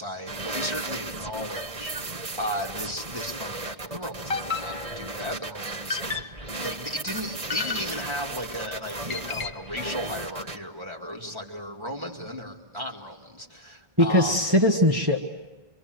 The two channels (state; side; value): late; left; 1.6 ms